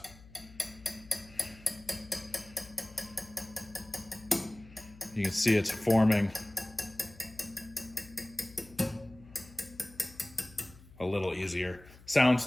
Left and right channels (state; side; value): noise; left; hum, 21 dB below the sound